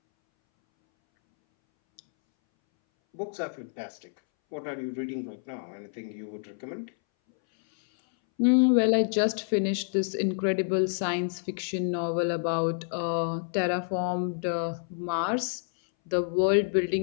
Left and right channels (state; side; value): silent; right; 59 dB below the other